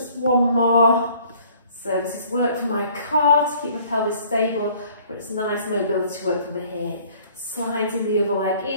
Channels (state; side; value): inverted; both; correlation -0.56